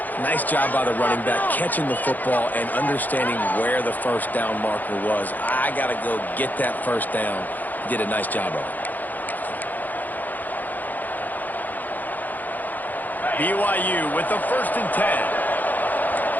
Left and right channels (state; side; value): late; right; 0.084 ms